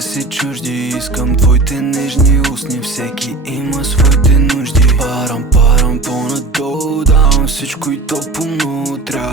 си чужди. Искам твоите нежни устни, всеки има своите нужди. Парам по-надолу, давам всичко и то по-много.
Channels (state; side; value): quieter; left; 3.3 dB